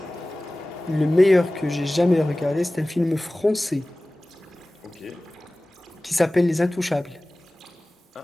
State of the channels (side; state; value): both; normal; correlation 0.98